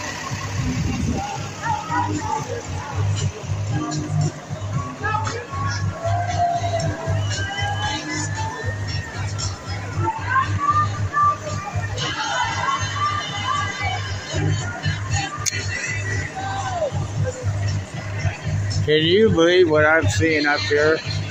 Can you believe what I'm seeing up here?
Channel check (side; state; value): both; identical; correlation 1.00